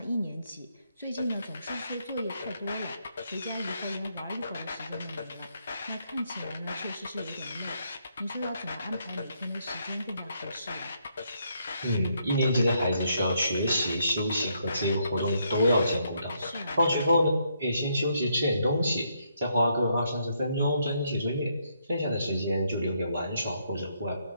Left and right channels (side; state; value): both; inverted; correlation -0.75